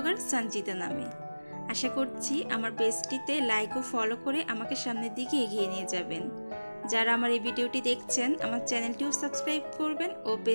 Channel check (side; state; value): both; inverted; correlation -1.00